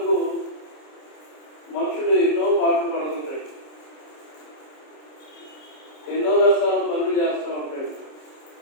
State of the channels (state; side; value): late; right; 27 ms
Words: మనుషులు ఎన్నో పాటలు పడుతుంటాడు, ఎన్నో రకాల పనులు చేస్తూ ఉంటాడు.